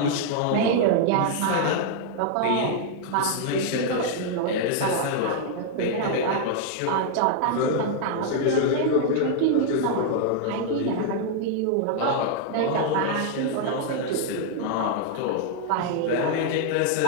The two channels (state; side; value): different; both; correlation 0.00